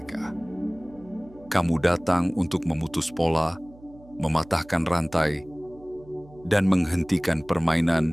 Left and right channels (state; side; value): noise; right; hum, 23 dB below the sound